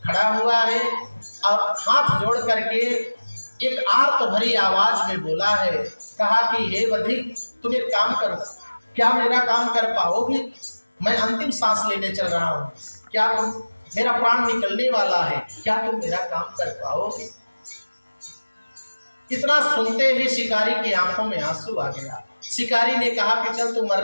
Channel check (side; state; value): both; inverted; correlation -1.00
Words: खड़ा हुआ है, और हाथ जोड़ करके एक आर्त भरी आवाज में बोला है, कहा कि हे बधिक, तुम एक काम करो, क्या मेरा काम कर पाओगे? मैं अंतिम सांस लेने चल रहा हूँ, क्या तुम, मेरा प्राण निकलने वाला है, क्या तुम मेरा काम कर पाओगे? इतना सुनते ही शिकारी की आंखों में आंसू आ गया। शिकारी ने कहा कि चल, तू